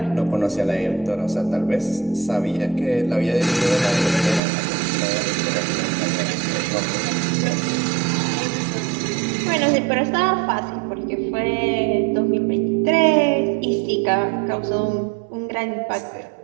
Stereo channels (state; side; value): drops out; left; at 4.4 s